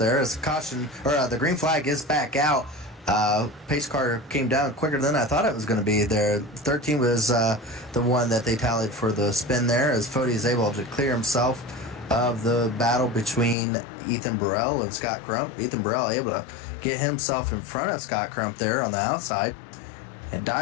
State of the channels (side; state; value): right; drops out; at 13.6 s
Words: As caution the green flag is back out. Pace car came down quicker than I thought it was going to be there. 13 was the one that they tallied for the spin there, as Fode is able to clear himself of the battle between Ethan Burrell and Scott Crump. Ethan Burrell able to get himself in front of Scott Crump there on the outside. and